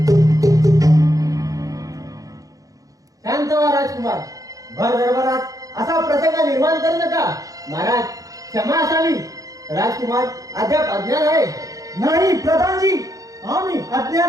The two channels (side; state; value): left; late; 0.17 ms